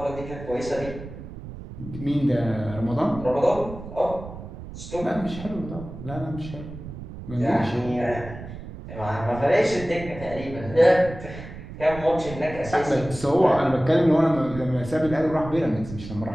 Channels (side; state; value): right; noise; rumble, 12 dB below the sound